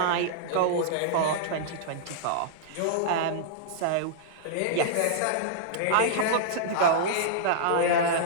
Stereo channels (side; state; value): both; different; correlation -0.02